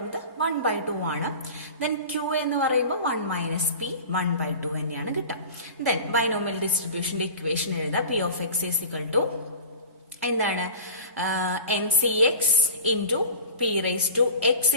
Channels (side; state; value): both; inverted; correlation -0.36